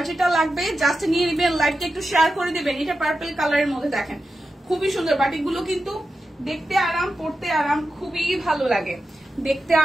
যেটা লাগবে জাস্ট নিয়ে নেবেন, লাইভটা একটু শেয়ার করে দিবেন। এটা পার্পল কালারের মধ্যে দেখেন, খুবই সুন্দর বাটিক গুলো, কিন্তু দেখতে আরাম, পড়তে আরাম, খুবই ভালো লাগে। দেখতে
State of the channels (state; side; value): normal; both; correlation 0.91